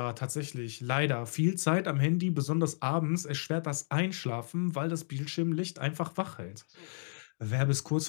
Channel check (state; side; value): silent; right; digital silence